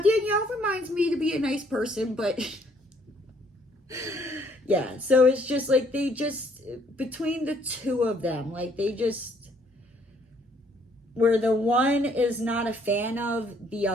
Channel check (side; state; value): both; normal; correlation 0.65